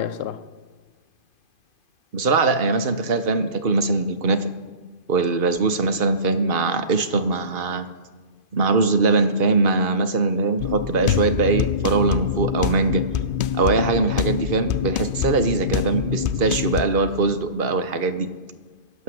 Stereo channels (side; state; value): left; late; 2.5 ms